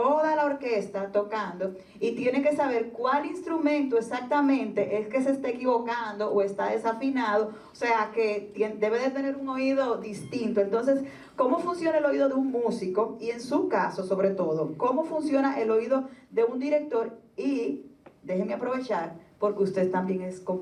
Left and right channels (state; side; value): identical; both; correlation 1.00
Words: la orquesta tocando y tiene que saber cuál instrumento exactamente es que se está equivocando o está desafinado, o sea que debe de tener un oído distinto. Entonces, ¿cómo funciona el oído de un músico? Y en su caso, sobre todo, ¿cómo funciona el oído de un director? Y déjeme aprovechar, porque usted también es